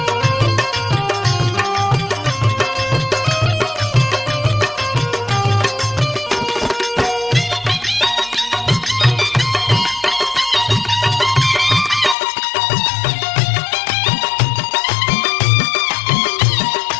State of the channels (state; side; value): drops out; right; at 12.2 s